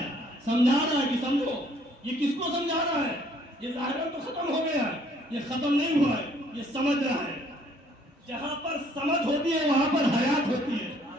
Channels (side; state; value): both; normal; correlation 0.62